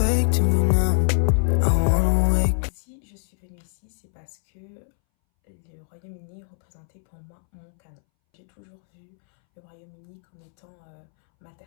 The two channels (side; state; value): right; silent; 62 dB below the other